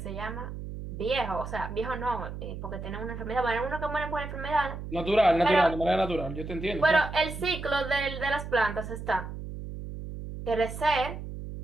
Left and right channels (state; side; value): noise; right; hum, 8 dB below the sound